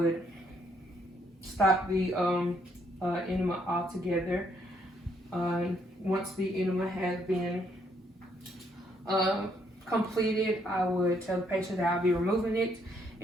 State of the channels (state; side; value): normal; both; correlation 0.71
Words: stop the enema altogether. Once the enema has been completed, I would tell the patient that I'll be removing it,